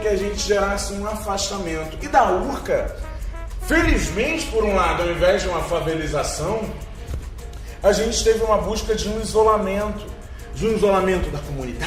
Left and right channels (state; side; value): identical; both; correlation 1.00